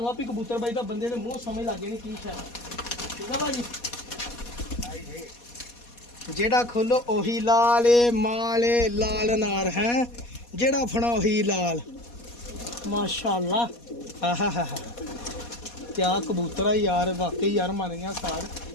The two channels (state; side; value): late; right; 4.2 ms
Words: ਆਪੀ ਕਬੂਤਰ ਬਾਈ ਦਾ ਬੰਦੇ ਦੇ ਮੂੰਹ ਸਮਝ ਲੱਗ ਜਾਣੀ ਕੀ ਸ਼ਾਇਦ। ਠੀਕ ਆ ਭਾਜੀ। ਜਿਹੜਾ ਖੋਲੋ ਉਹੀ ਲਾਲ ਮਾਲੇ ਲਾਲ ਨਾਰ ਹੈ। ਜਿਹੜਾ ਫੜਾ ਉਹੀ ਲਾਲ ਮਾਸ਼ਾਅੱਲਾ। ਆਹਾ ਕਿਆ ਕਬੂਤਰ ਆ ਯਾਰ। ਵਾਕਈ ਯਾਰ ਮੰਨ ਗਿਆ ਸਾਰ।